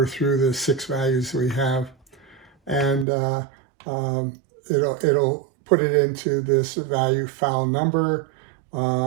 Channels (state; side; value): drops out; left; at 3.1 s